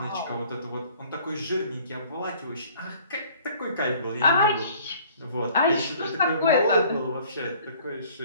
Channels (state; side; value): inverted; both; correlation -0.54